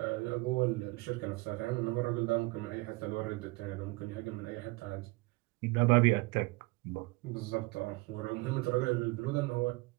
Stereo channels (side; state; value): left; quieter; 24.2 dB